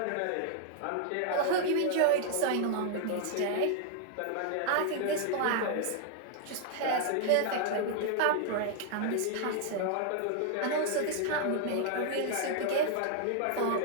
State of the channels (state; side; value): different; both; correlation 0.00